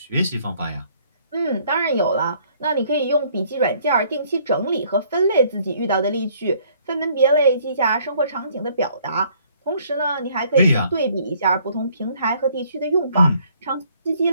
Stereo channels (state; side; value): inverted; both; correlation -0.62